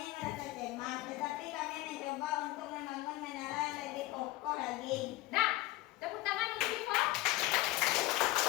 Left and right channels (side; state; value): right; quieter; 18.6 dB